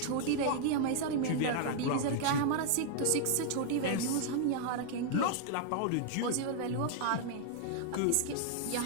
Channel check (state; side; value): different; both; correlation 0.00